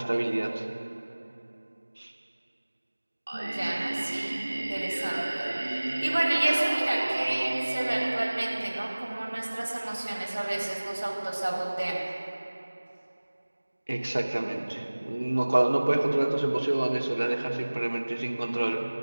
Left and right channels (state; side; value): inverted; both; correlation -1.00